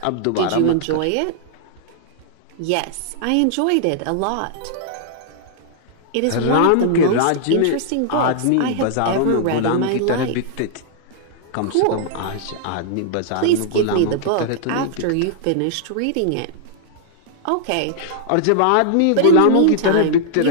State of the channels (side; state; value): both; different; correlation -0.01